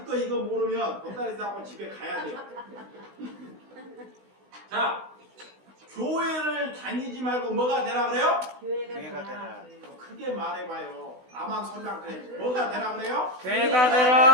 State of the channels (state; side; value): late; left; 16 ms